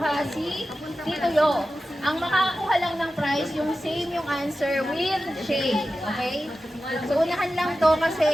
si Tito Yo. Ang makakakuha lang ng prize, yung same yung answer with shade. Okay? So, unahan lang to kasi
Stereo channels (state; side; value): normal; both; correlation 0.93